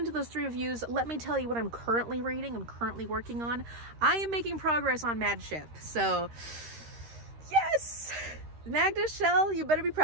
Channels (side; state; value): left; late; 13 ms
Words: those 3 reviews, let me tell you what I'm currently reading, I'm currently working on. I am making progress on Mad Ship. So yes! Magda Shell, you better be